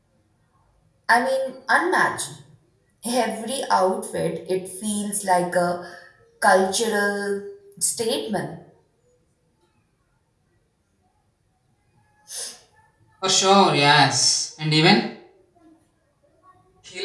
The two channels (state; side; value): identical; both; correlation 1.00